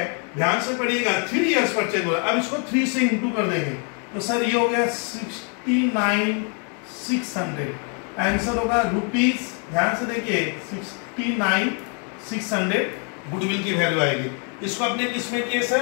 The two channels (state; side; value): quieter; right; 39.5 dB